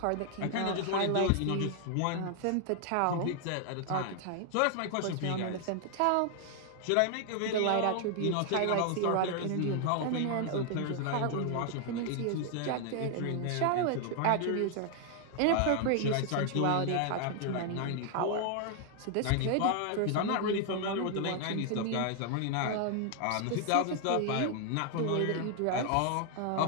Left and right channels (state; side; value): different; both; correlation 0.00